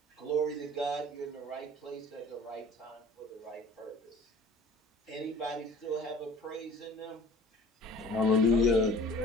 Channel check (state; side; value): normal; both; correlation 0.46